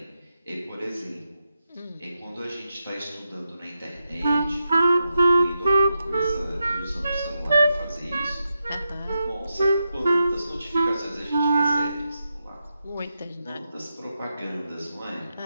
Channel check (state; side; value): inverted; both; correlation -0.87